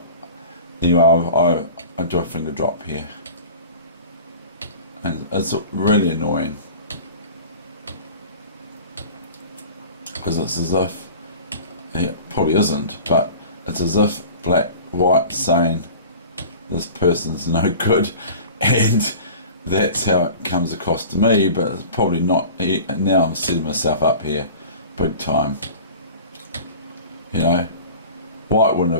anyway, I do a finger drop here, and it's really annoying because it's as if, it probably isn't, but it's as if white saying this person's no good, and that's how it comes across to me. But it's probably not. Now I'm setting myself up here big time. You know, white wouldn't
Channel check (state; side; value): inverted; both; correlation -0.39